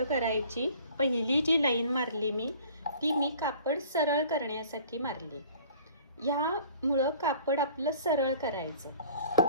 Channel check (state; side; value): inverted; both; correlation -0.50